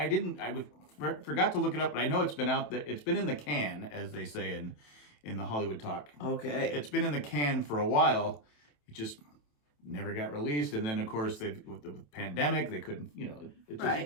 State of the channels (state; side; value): late; right; 27 ms